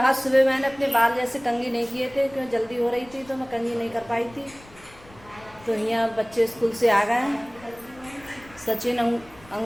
सुबह मैंने अपने बाल जैसे कंघी नहीं किए थे, क्योंकि जल्दी हो रही थी तो मैं कंघी नहीं कर पाई थी। तो यहाँ बच्चे स्कूल से आ गए हैं,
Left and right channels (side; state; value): left; noise; rumble, 24 dB below the sound